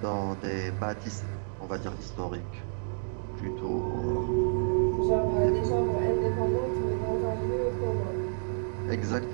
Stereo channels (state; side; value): silent; left; digital silence